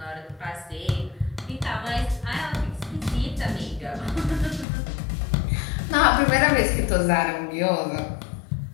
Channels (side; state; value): right; drops out; at 4.7 s